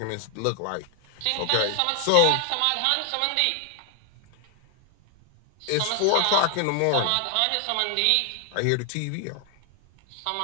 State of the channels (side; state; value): both; different; correlation 0.00